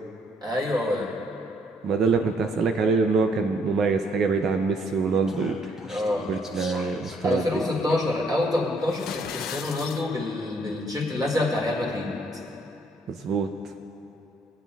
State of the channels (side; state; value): both; normal; correlation 0.67